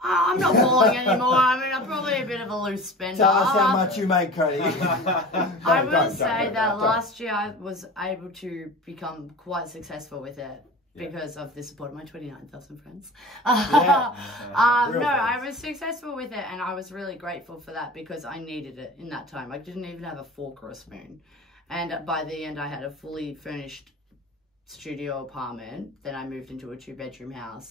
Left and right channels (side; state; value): both; normal; correlation 0.36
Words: I'm not balling anymore. I mean, I'm probably a bit of a loose spender. Tell us how much you make, Cody. I will say that last year I was able to become quite successful with it because of the support of my 29,000 friends. No, I was successful with it, and I was really grateful for that because I needed it in that time. I didn't even have a fork or a spoon. And by the end, I had a fully furnished studio apartment. Then I moved into a 2-bedroom